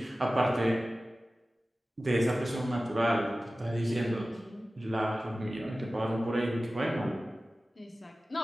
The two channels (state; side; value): normal; both; correlation 0.96